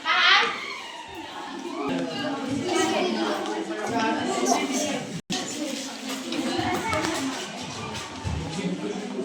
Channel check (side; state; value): both; identical; correlation 1.00